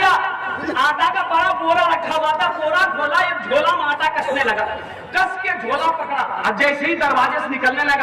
आटा का बड़ा बोरा रखा हुआ था, बोरा खोला, एक झोला में आटा कसने लगा, कस के झोला पकड़ा और जैसे ही दरवाजे से निकलने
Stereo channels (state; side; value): identical; both; correlation 1.00